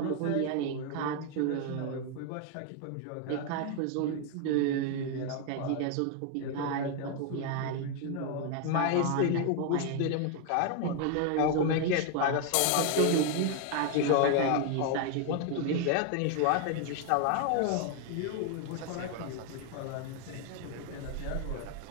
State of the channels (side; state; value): both; different; correlation 0.01